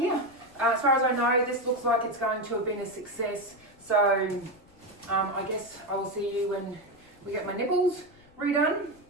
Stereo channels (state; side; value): noise; left; rumble, 28 dB below the sound